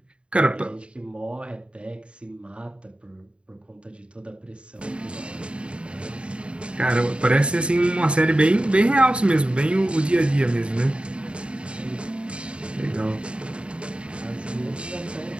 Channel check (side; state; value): left; late; 0.056 ms